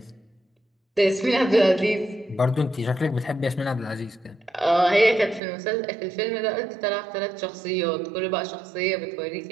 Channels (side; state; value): left; drops out; at 5.4 s